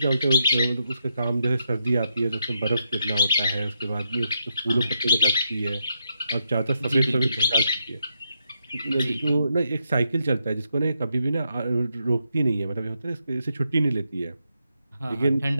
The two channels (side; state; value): both; inverted; correlation -0.81